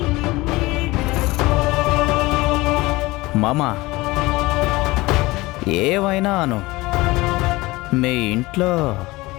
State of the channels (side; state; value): right; quieter; 20.8 dB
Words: మామా, ఏవైనా అను, మీ ఇంట్లో